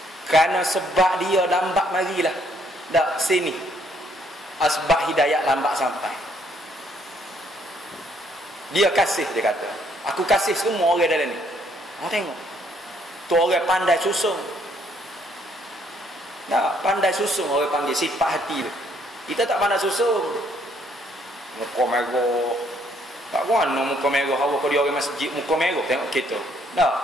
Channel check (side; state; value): both; normal; correlation 0.67